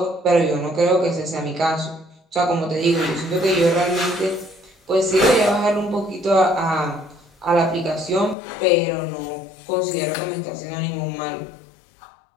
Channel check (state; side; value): drops out; right; at 8.3 s